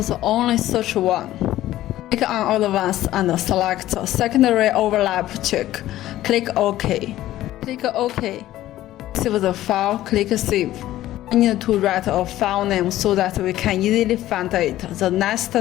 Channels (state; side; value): quieter; right; 14.4 dB